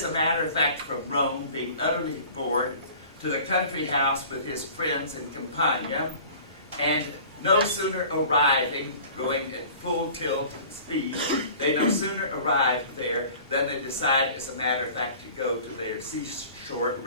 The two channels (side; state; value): both; inverted; correlation -0.45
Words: a matter of fact, from Rome, being utterly bored, to the country house with his friends in Campania, and no sooner arriving, going at full tilt speed, they no sooner arrived there than they decide, as a matter of fact, to go to their seashore